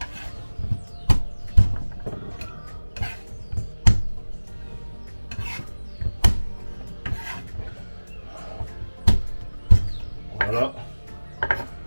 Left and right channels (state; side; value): inverted; both; correlation -1.00